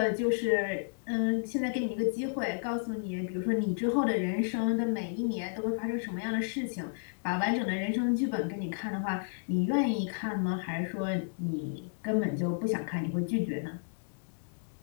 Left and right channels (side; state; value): right; silent; digital silence